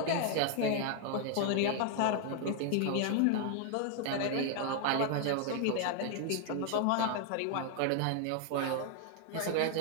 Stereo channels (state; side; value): different; both; correlation 0.00